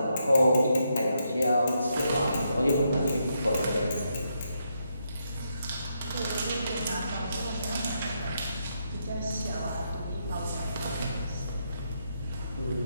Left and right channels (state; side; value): inverted; both; correlation -0.80